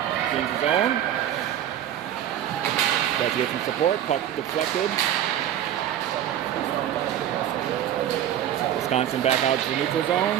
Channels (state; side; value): quieter; left; 11.0 dB